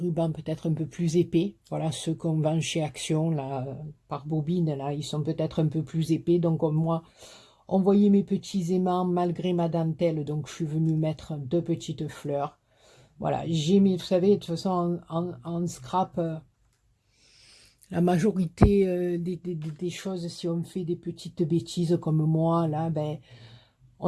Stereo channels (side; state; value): both; identical; correlation 1.00